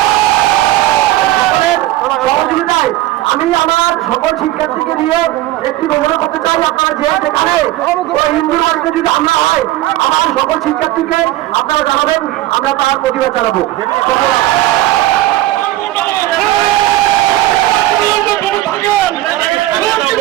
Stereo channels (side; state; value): left; quieter; 16.1 dB